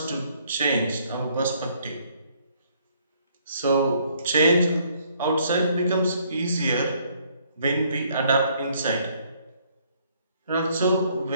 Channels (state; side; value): inverted; both; correlation -0.66